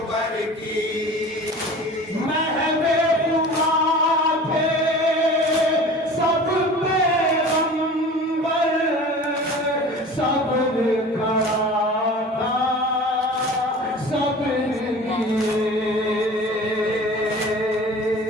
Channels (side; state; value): both; normal; correlation 0.40